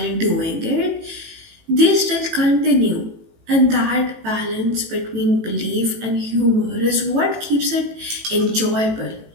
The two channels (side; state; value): left; late; 18 ms